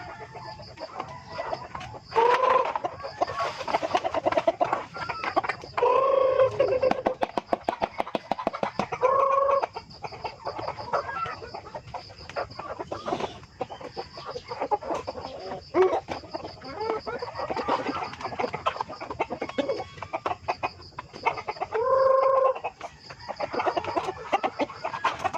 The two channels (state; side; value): identical; both; correlation 1.00